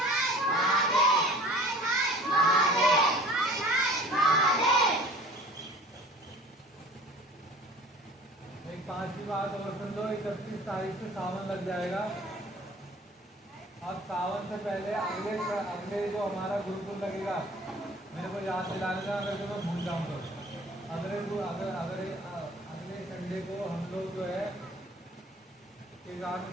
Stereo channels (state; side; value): normal; both; correlation 0.47